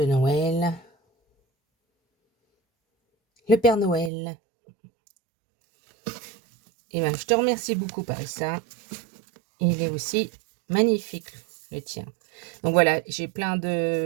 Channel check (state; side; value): drops out; left; at 4.1 s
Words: Noël, le Père Noël. Et ben, je te remercie beaucoup, Parissa. Il est aussi magnifique, le tien. Donc voilà, j'ai plein